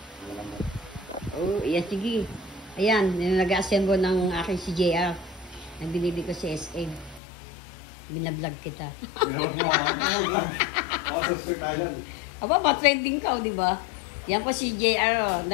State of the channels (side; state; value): right; drops out; at 7.2 s